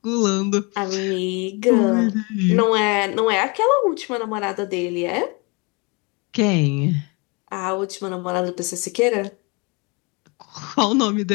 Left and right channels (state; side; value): quieter; right; 29.5 dB